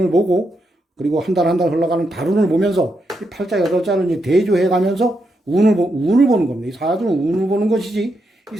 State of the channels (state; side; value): normal; both; correlation 0.82